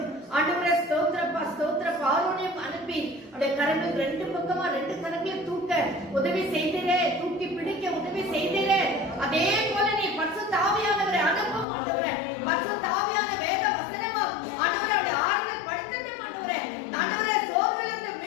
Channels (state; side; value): drops out; right; at 11.7 s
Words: ஆண்டவரே ஸ்தோத்திரப்பா ஸ்தோத்திரப்பா ஆரோனையும் அனுப்பி அவருடைய கரங்கள் ரெண்டு பக்கமா ரெண்டு கரங்களை தூக்க உதவி செய்தீரே, தூக்கி பிடிக்க உதவி செய்தீரே. அதே போல நீ பசுத்த ஆவியானவரை அனுப்பும் ஆண்டவரே. பசுத்த ஆவியான வேத வசனமும் ஆண்டவரே அவருடைய ஆறுதல் படுத்தட்டும் ஆண்டவரே. ஆண்டவரே, சோர்விலிருந்து